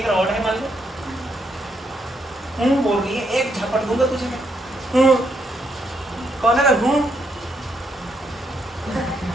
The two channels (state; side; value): normal; both; correlation 0.76